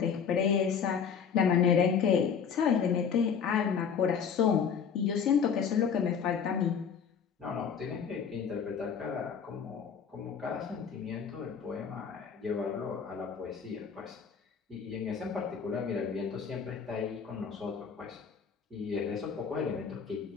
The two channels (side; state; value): right; quieter; 6.8 dB